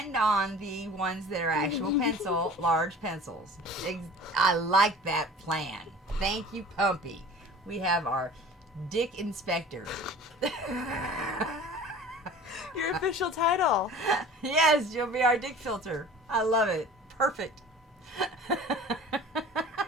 on the ones that are actual large pencils. I like that plan. Thank you, Pumpy. We have our dick inspector. Your official title. Yes, you'll be our dick filter. I love it. Perfect.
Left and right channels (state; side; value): normal; both; correlation 0.43